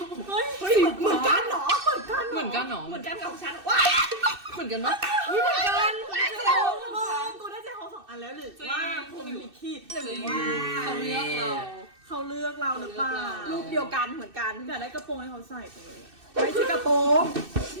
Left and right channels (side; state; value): left; late; 2.6 ms